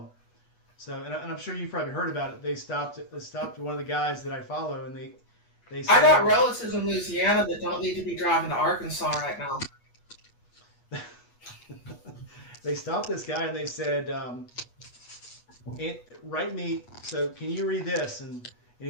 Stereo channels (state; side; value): late; right; 8.3 ms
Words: So, and I'm sure you've probably heard about it. They stopped one of the guys that I follow, and they They I got said relatives in Louisiana that don't need to be driving to Arkansas right now. they stopped this guy and they said, write me. So can you read this? And